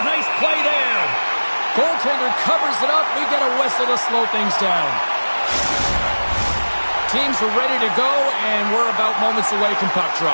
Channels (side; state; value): both; inverted; correlation -1.00